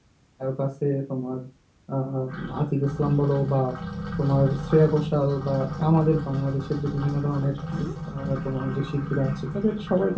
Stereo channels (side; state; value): both; identical; correlation 1.00